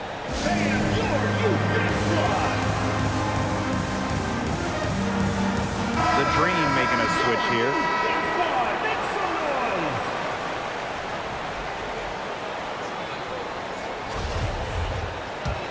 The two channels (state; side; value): identical; both; correlation 1.00